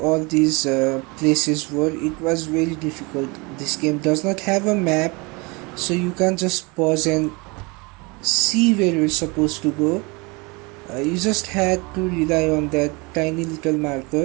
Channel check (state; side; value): quieter; left; 27.4 dB